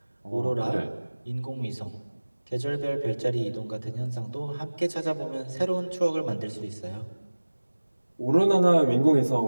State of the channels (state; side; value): inverted; both; correlation -1.00